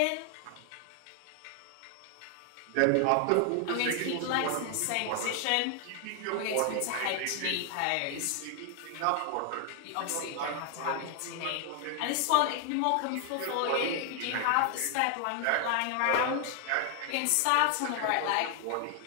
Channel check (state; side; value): different; both; correlation 0.00